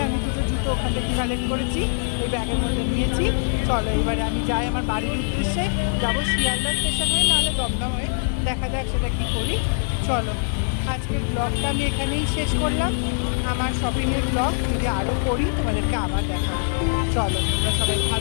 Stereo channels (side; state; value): right; silent; digital silence